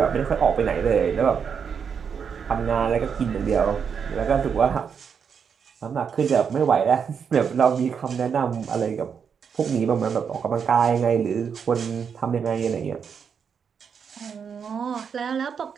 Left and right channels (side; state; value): left; quieter; 6.8 dB